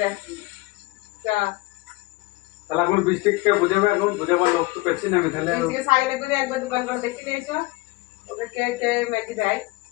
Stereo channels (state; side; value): quieter; right; 21.4 dB